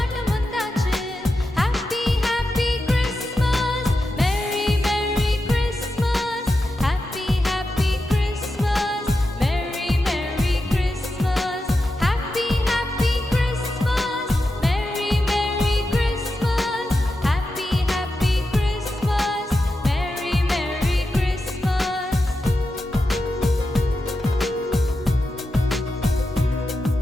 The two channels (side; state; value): both; normal; correlation 0.89